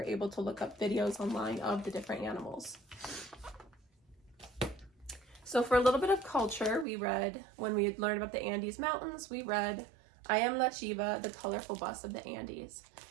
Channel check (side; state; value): left; drops out; at 6.9 s